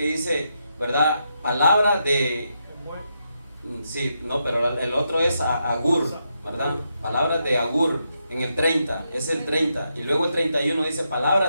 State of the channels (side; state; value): both; inverted; correlation -0.82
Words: dice, ¿verdad?, palabra de... Sí, no, pero el otro es Agur, ¿verdad? Palabras de Agur, en el 30, es el 30. Y luego el 31 dice